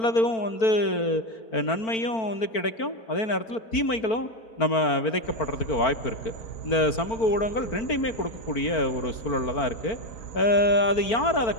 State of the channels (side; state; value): right; late; 4.5 ms